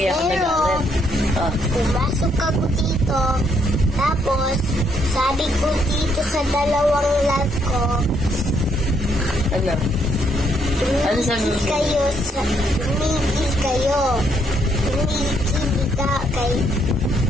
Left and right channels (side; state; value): both; normal; correlation 0.72